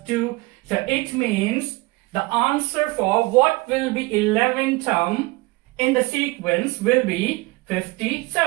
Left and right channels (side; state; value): left; quieter; 23.2 dB